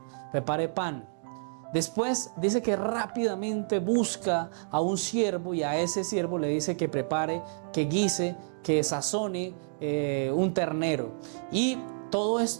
prepare pan. Después dice que rápidamente busca a un siervo y a ese siervo le dice que prepare, que guise, que sazone un ternero. Y todo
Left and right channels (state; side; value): silent; left; 58 dB below the other